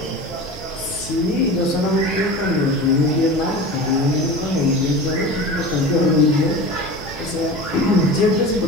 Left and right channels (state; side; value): normal; both; correlation 0.33